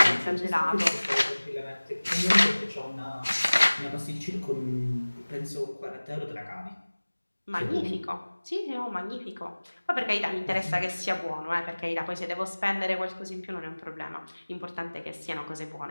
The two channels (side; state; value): both; inverted; correlation -1.00